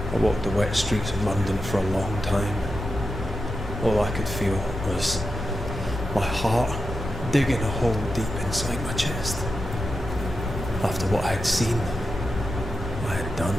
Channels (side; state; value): both; normal; correlation 0.89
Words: I walked the wet streets of London for a long time. All I could feel was my heart digging a hole deep inside my chest. After what I had seen, what I had done,